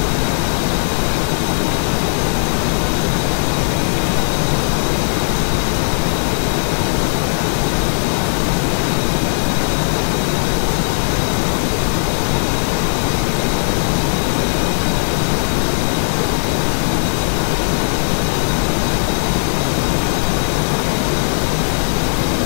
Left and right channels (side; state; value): right; silent; 61 dB below the other